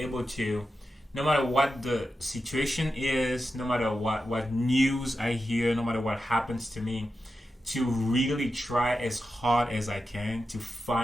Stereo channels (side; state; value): both; normal; correlation 0.90